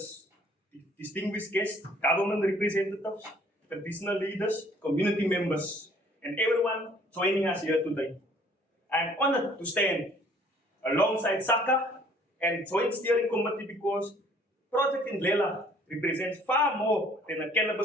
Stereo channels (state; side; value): normal; both; correlation 0.58